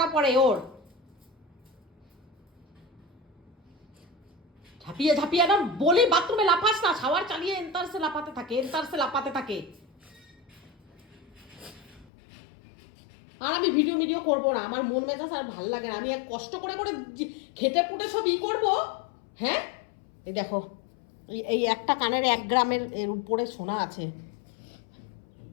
পড়ে ওর, ঝাঁপিয়ে না বলি বাথরুমে লাফাস না, শাওয়ার চালিয়ে এন্তারসে লাফাতে থাকে। আর আমি ভিডিও করবো না, আমার মন মেজাজ আর ভাল লাগে না। আমি এক কষ্ট করে খেটে পুটে সব করবো। হ্যাঁ, এই দেখো, এই একটা কানের 1 গ্রামের এর উপরে সোনা আছে।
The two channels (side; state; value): right; drops out; at 12.1 s